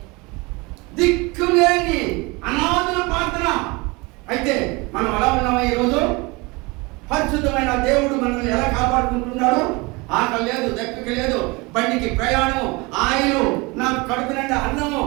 దిక్కులేని అనాథుల ప్రార్థన. అయితే మనం ఎలా ఉన్నామా ఈరోజు? పరిశుద్ధమైన దేవుడు మనల్ని ఎలా కాపాడుకుంటున్నాడు? ఆకలి లేదు, దక్కకి లేదు, బండికి ప్రయాణం, ఆయిలు, నాకు కడుపు నిండా అన్నము,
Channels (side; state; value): left; quieter; 25.7 dB